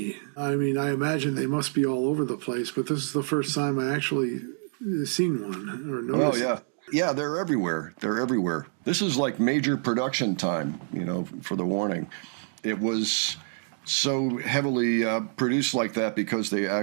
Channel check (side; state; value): left; silent; digital silence